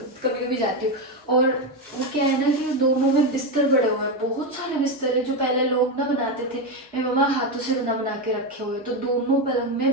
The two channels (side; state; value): both; normal; correlation 0.11